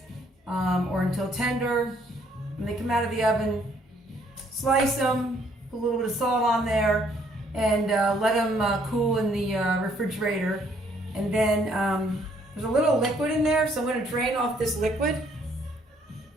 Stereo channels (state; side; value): normal; both; correlation 0.66